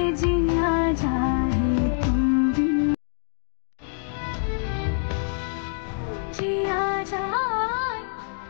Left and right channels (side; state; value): right; silent; digital silence